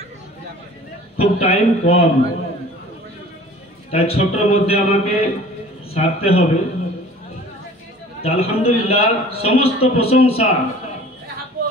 খুব টাইম কম তাই ছোটর মধ্যে আমাকে সারতে হবে আলহামদুলিল্লাহ সমস্ত প্রশংসা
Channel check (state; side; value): normal; both; correlation 0.46